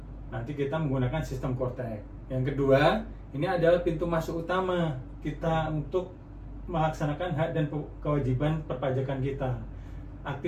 nanti kita menggunakan sistem Kortek. Yang kedua, ini adalah pintu masuk utama kita untuk melaksanakan hak dan kewajiban perpajakan kita.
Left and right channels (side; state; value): both; identical; correlation 1.00